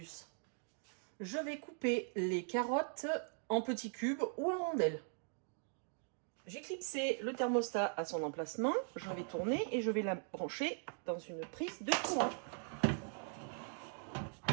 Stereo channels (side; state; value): left; silent; 51 dB below the other